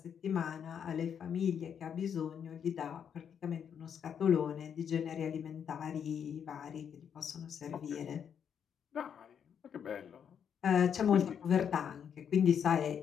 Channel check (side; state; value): right; quieter; 8.0 dB